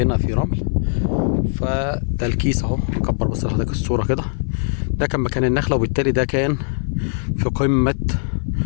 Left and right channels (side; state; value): right; silent; 57 dB below the other